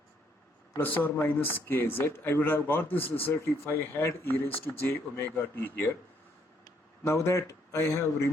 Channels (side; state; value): both; normal; correlation 0.69